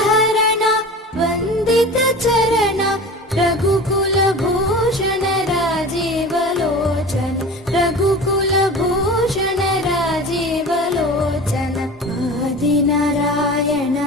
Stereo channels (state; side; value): normal; both; correlation 0.35